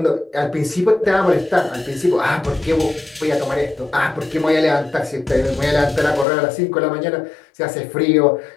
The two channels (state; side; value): drops out; right; at 6.2 s